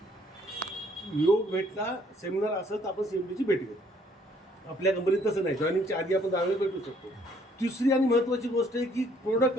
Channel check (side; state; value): both; normal; correlation 0.63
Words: योग भेटला सेमिनार असं तर आपण CMDची भेट घेतो. आपल्या कंपनीत तसं नाही, जॉईनिंगच्या आधी आपण 10 वेळा भेटू शकतो. तिसरी आणि महत्त्वाची गोष्ट आहे की